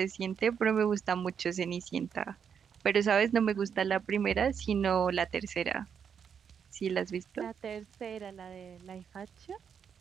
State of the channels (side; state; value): left; quieter; 7.3 dB